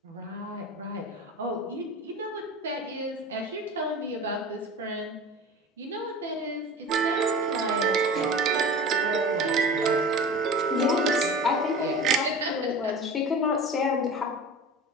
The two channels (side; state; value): both; normal; correlation 0.35